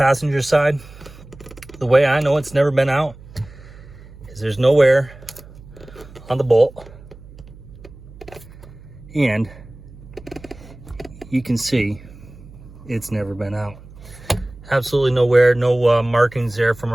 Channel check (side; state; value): right; noise; hum, 19 dB below the sound